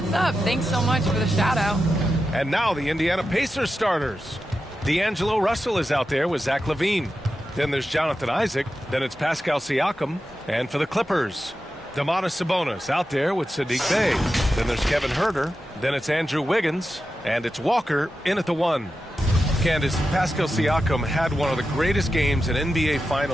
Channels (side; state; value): both; normal; correlation 0.91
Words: up? Thanks so much for the shout-out. And now the Indiana Pacers starters. D'Angelo Russell is out there with Zach LaVine. Then there's Jonathan Isaac. Then it's Pascal Siakam. And for the Clippers, Domantas Sabonis out there with Saddiq Bey. Then there's Kevin Huerter. Then it's Andrew Wiggins. And it's Walker in at the 1. Candace, Pascal Siakam had one of the greatest games in NBA